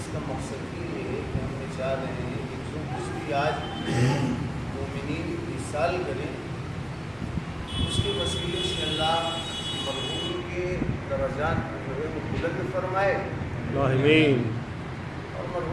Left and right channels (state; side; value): identical; both; correlation 1.00